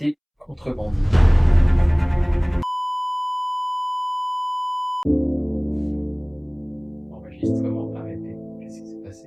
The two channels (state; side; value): identical; both; correlation 1.00